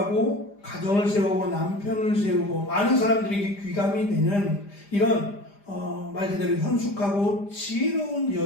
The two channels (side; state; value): right; late; 5.0 ms